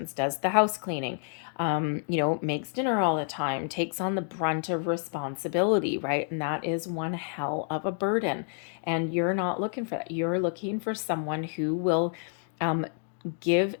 does the house cleaning, makes dinner all the time, takes on the brunt of responsibility, right? And that is one hell of a burden. And you're not looking for that. You're looking for someone who will give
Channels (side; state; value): right; silent; 56 dB below the other